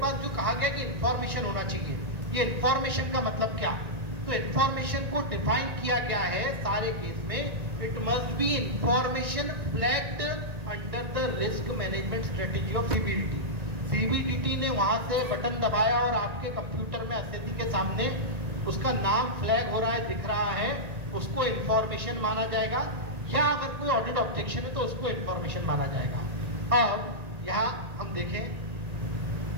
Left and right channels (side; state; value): left; late; 1.9 ms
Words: जो कहा गया कि इंफॉर्मेशन होना चाहिए, ये इंफॉर्मेशन का मतलब क्या? तो इंफॉर्मेशन को डिफाइन किया गया है सारे केस में, it must be information flagged under the risk management strategy of CBDT. CBDT ने वहां से बटन दबाया और आपके कंप्यूटर में एसएससी के सामने उसका नाम फ्लैग हो रहा है, दिख रहा है, उसको इंफॉर्मेशन माना जाएगा, या अगर कोई ऑडिट ऑब्जेक्शन है तो उसको इंफॉर्मेशन माना जाएगा। अब यहाँ हम देखें